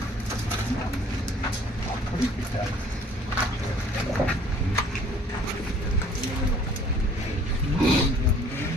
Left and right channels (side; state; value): both; normal; correlation 0.55